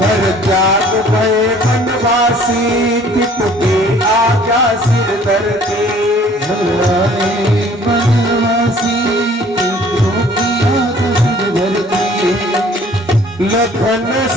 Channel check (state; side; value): normal; both; correlation 0.54